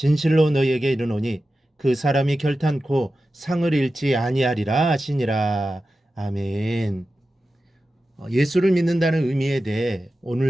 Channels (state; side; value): normal; both; correlation 0.93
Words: 너희에게 이르노니 그 사람이 결탄코 상을 잃지 아니하리라 하시니라. 아멘. 예수를 믿는다는 의미에 대해